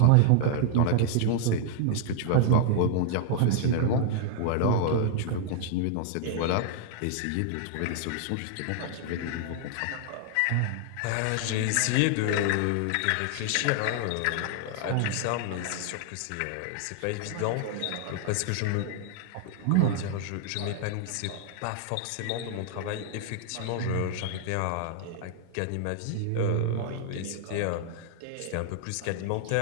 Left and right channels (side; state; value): both; different; correlation 0.00